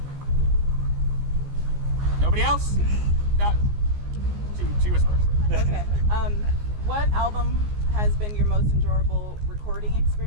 Nobody else? No. She was first. Okay. What album has been your most enjoyable recording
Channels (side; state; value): left; late; 14 ms